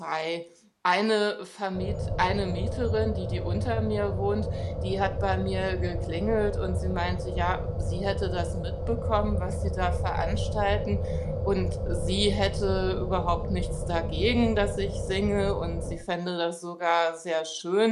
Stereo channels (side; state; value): both; identical; correlation 1.00